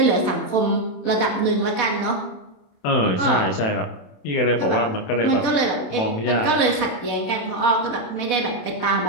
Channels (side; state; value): right; late; 27 ms